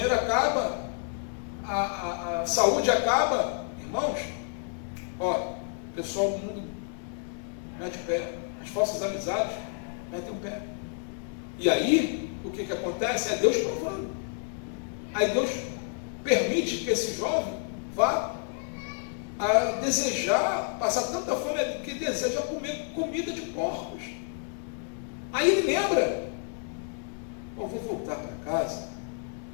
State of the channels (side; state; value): right; silent; 56 dB below the other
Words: acaba, a saúde acaba, irmãos, ó, o pessoal do mundo mete o pé, as falsas amizades metem o pé. E aí, o que acontece? É Deus provando. Aí Deus permite que esse jovem vá a desejar, passar tanta fome que deseja comer comida de porcos. Aí ele lembra eu vou voltar para casa,